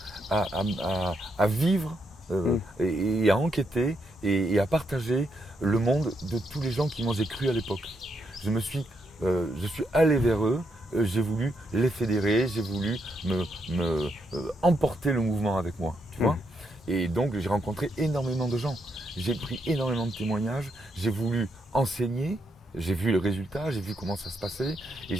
à vivre et à enquêter et à partager le monde de tous les gens qui m'ont cru à l'époque. Je suis allé vers eux, j'ai voulu les fédérer, j'ai voulu emporter le mouvement avec moi, tu vois. Et donc j'ai rencontré énormément de gens, j'ai pris énormément de témoignages, j'ai voulu enseigner, j'ai vu le résultat, j'ai vu comment ça se passait et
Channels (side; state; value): both; normal; correlation 0.79